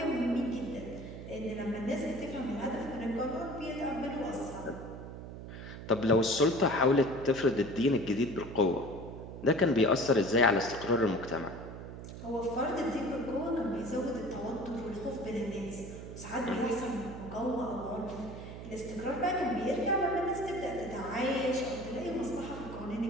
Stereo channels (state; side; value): noise; right; hum, 11 dB below the sound